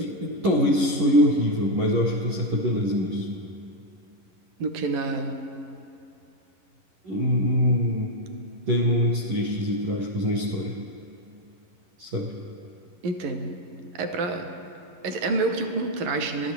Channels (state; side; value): late; left; 11 ms